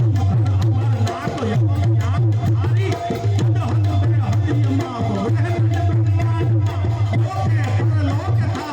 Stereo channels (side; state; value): both; identical; correlation 1.00